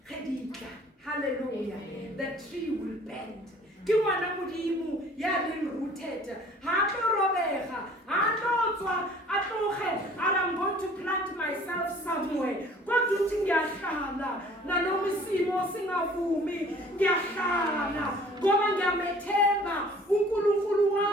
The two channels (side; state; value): both; normal; correlation 0.52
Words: Hallelujah. Amen. The tree will bend. Kiwana mudimu yali rooted. Hato robeha. Hato atohe. I'm going to plant myself somewhere. God do tingyashala. Na nomisimo singavumi. Ngyashala. Ngoba ngiyamethemba uNkulunkulu